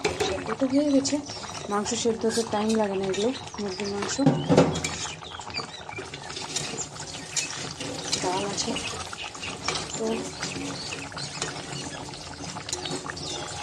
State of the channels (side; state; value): both; identical; correlation 1.00